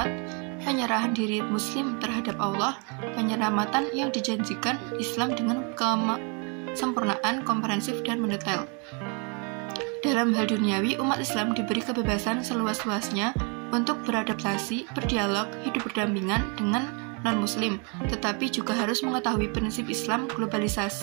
penyerahan diri Muslim terhadap Allah, penyelamatan yang dijanjikan Islam dengan kesempurnaan, komprehensif, dan mendetail. Dalam hal duniawi, umat Islam diberi kebebasan seluas-luasnya untuk beradaptasi, berdialog, hidup berdampingan dengan non-muslim, tetapi juga harus mengetahui prinsip Islam.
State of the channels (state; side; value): quieter; left; 35.3 dB